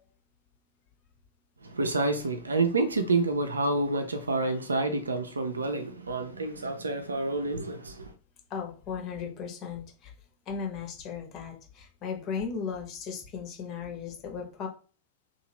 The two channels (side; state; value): both; inverted; correlation -0.50